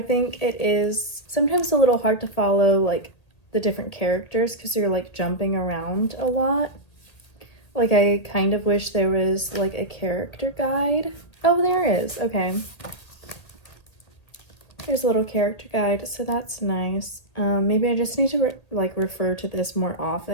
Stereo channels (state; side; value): late; right; 1.8 ms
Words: think it is sometimes a little hard to follow like the different characters because you're like jumping around a lot. Like I kind of wish there was like a character guide. Oh, there is. Okay. There's a little character guide, so that's nice. Maybe I just need to refer to this more